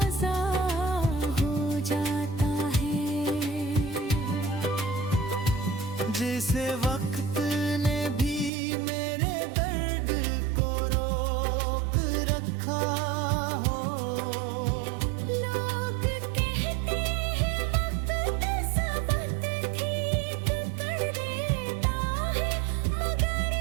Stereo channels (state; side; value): drops out; left; at 8.5 s